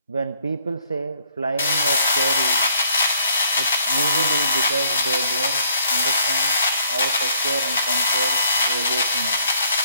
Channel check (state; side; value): inverted; both; correlation -0.65